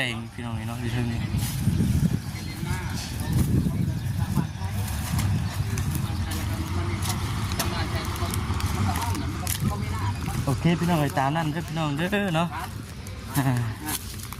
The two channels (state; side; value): identical; both; correlation 1.00